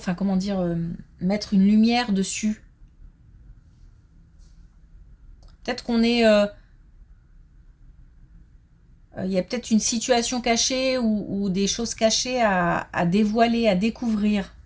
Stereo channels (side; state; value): both; identical; correlation 1.00